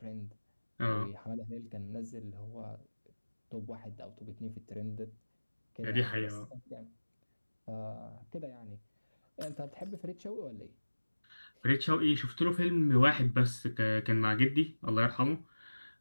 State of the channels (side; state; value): both; inverted; correlation -1.00